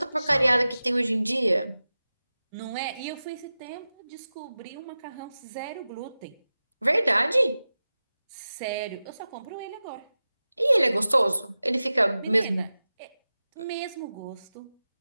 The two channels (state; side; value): inverted; both; correlation -0.95